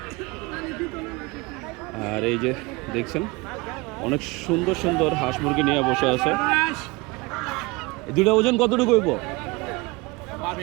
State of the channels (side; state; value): left; quieter; 24.6 dB